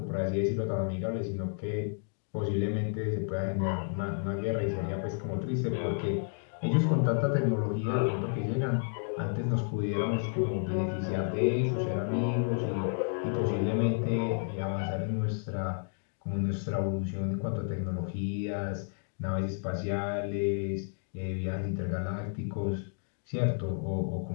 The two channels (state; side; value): silent; right; 57 dB below the other